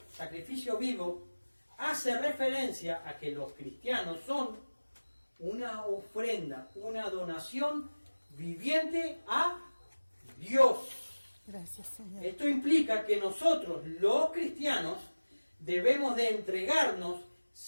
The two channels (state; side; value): inverted; both; correlation -1.00